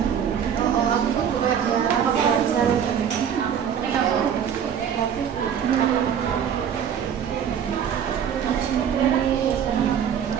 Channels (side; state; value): left; quieter; 8.4 dB